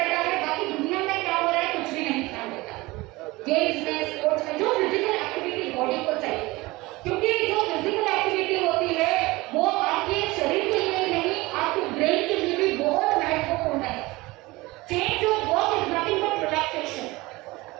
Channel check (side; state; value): left; quieter; 21.4 dB